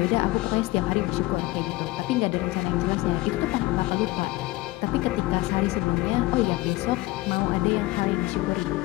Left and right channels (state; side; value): quieter; right; 19.5 dB